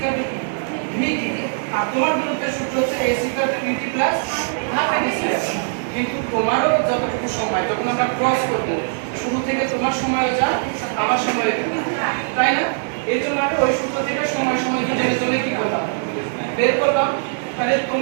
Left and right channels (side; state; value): left; silent; digital silence